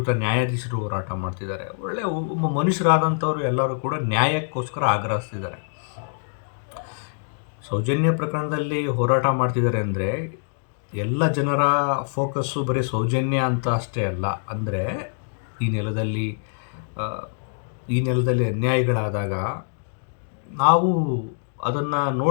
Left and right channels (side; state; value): right; silent; digital silence